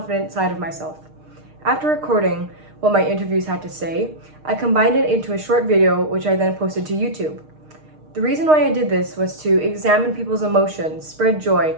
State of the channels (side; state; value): left; late; 6.5 ms